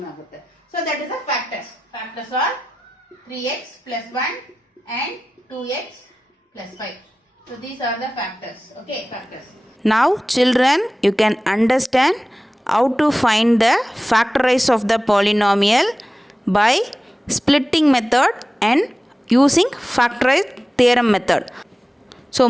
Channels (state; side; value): normal; both; correlation 0.95